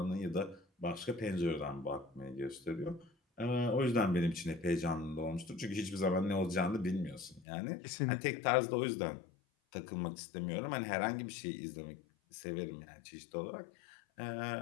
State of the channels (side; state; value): right; drops out; at 7.5 s